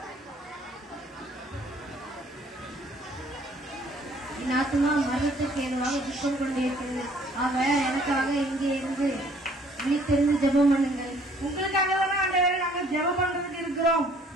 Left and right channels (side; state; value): both; normal; correlation 0.59